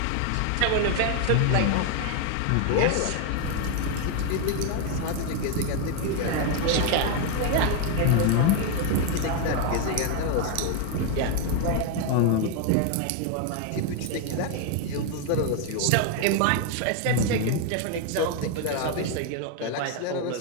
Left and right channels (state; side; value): different; both; correlation 0.01